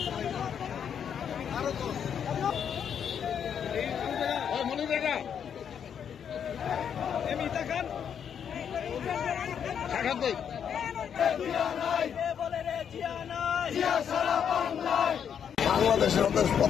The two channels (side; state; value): right; quieter; 8.1 dB